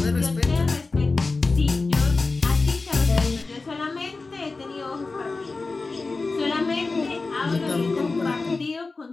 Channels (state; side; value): quieter; right; 3.8 dB